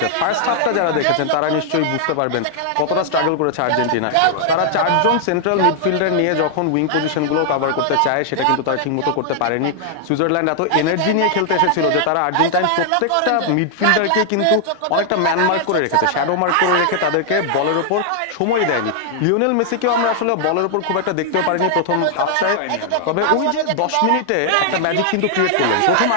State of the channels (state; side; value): different; both; correlation 0.00